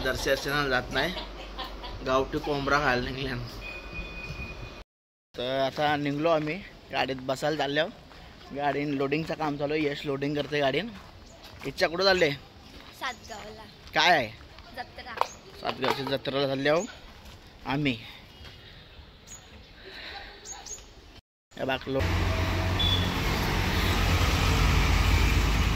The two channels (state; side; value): identical; both; correlation 1.00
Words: जात नाही, गावठी कोंबडा खायला निघल्या। तर आता निघलो आम्ही, गाडीत बसायला चाललो। गाडी लोडिंगचं काम चालू आहे, यश लोडिंग करते गाडीन। इच्छा कुठं चालले? सातगावला। काय आहे? जत्रा। सातगावच्या जत्रेला चाललो आम्ही। बाकलो